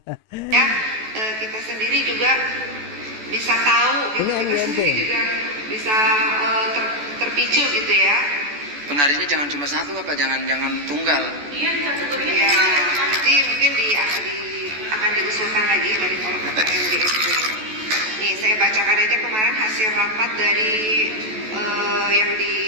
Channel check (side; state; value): left; late; 14 ms